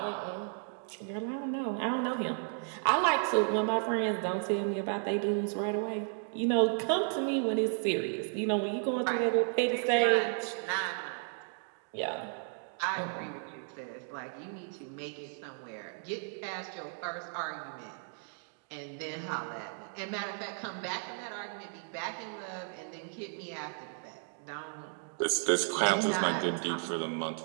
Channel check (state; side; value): silent; left; 55 dB below the other